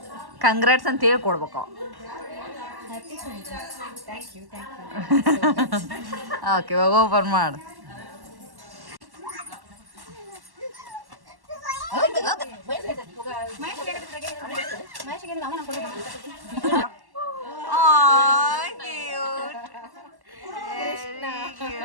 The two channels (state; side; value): late; left; 1.1 ms